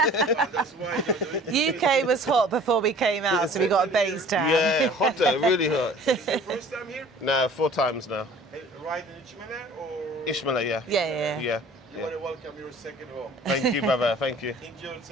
why you're doing this. UK was hot before we came out, so we got a base down. Yeah, hot though, really hot. Is it your first time here? No, 4 times now. Right in Icmeler or? Ishmael, yeah. Yeah. You are welcome. You're second home. Thank you, brother, thank you. Enjoy your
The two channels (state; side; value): normal; both; correlation 0.48